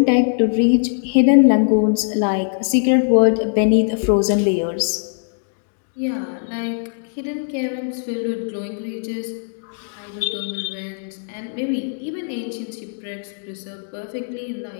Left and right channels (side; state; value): right; silent; digital silence